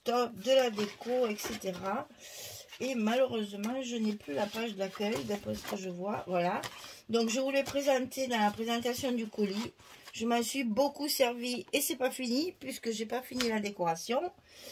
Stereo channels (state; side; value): identical; both; correlation 1.00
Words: de la déco, etc. Et malheureusement, je n'ai plus la page d'accueil, d'après ce que je vois. Voilà. Donc, je vous l'ai présenté dans la présentation du colis. Je m'en suis beaucoup servi et c'est pas fini puisque j'ai pas fini la décoration.